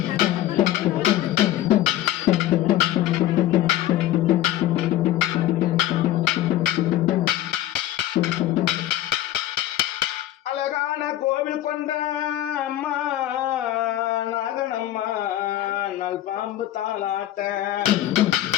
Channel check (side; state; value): right; quieter; 13.6 dB